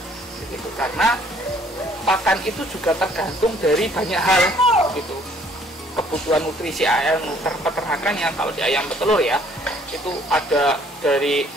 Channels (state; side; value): normal; both; correlation 0.61